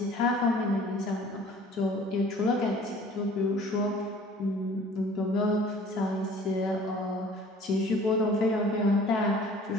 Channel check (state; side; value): normal; both; correlation 0.50